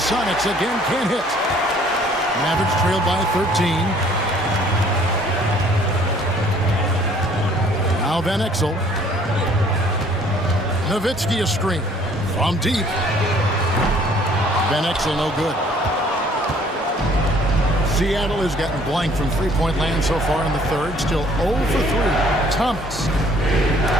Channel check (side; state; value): both; normal; correlation 0.58